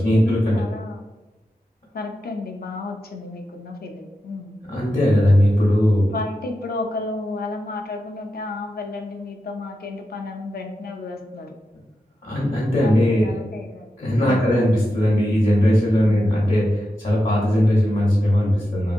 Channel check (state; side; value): normal; both; correlation 0.89